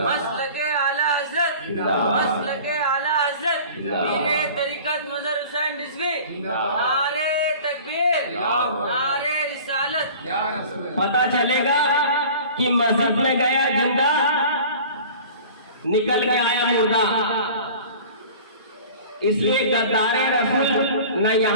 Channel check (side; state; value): both; inverted; correlation -0.42